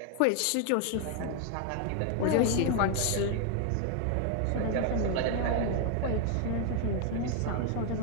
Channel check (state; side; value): different; both; correlation 0.00